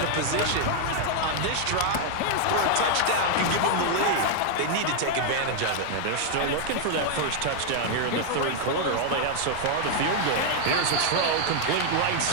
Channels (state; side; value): different; both; correlation 0.00